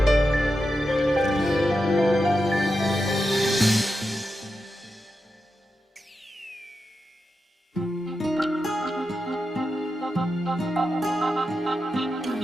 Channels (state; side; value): normal; both; correlation 0.88